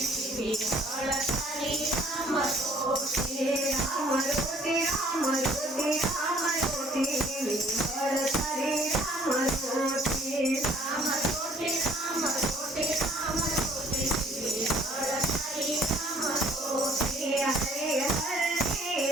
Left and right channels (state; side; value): normal; both; correlation 0.57